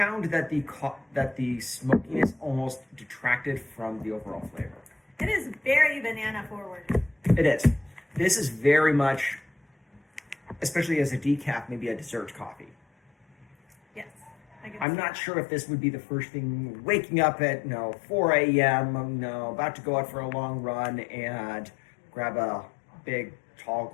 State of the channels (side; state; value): right; drops out; at 14.9 s